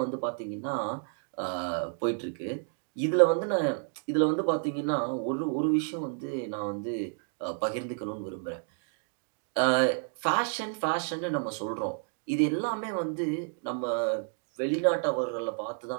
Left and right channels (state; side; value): silent; left; 57 dB below the other